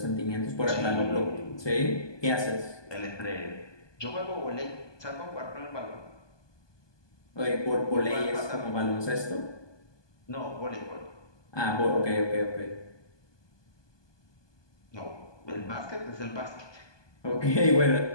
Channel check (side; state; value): right; late; 1.2 ms